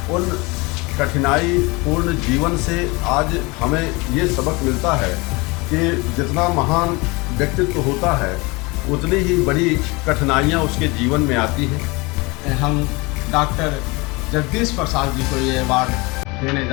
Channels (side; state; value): right; quieter; 25.7 dB